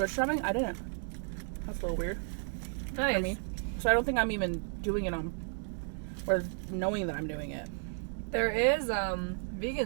shopping, I didn't. That's a little weird. Nice. For me. So I don't think I'm even doing it on, or knowing that I'm doing it. There is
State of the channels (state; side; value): silent; left; 56 dB below the other